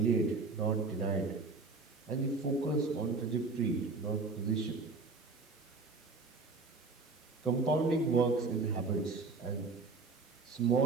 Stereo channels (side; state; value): left; quieter; 4.0 dB